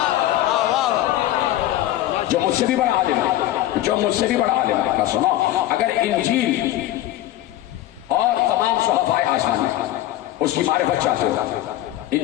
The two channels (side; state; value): right; quieter; 14.3 dB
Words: جو مجھ سے بھی بڑا عالم ہے، جو مجھ سے بھی بڑا عالم ہے، کا سنو، اگر انجیل اور تمام صحابہ آسمانی اس کی معرفت چاہتے ہو،